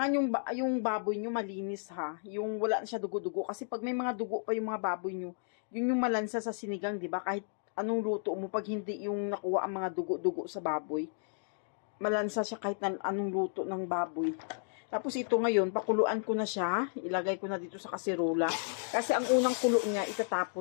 yung baboy nyo malinis ha. Yung wala na siya dugo-dugo. Kasi pag may mga dugo pa yung mga baboy nyo, yun yung malansa sa sinigang, di ba? Kahit anong luto mo, pag hindi yung nakuha ang mga dugo-dugo sa baboy, malansa siya kahit anong luto ng baboy. Tapos ito ngayon, pakuluan ko na siya. Ilagay ko na dito sa kasirula. Kasi ang unang kulo niya,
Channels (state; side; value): silent; right; digital silence